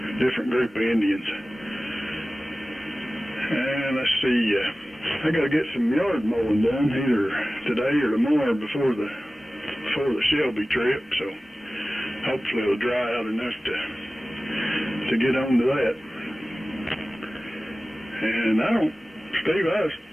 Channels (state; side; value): normal; both; correlation 0.96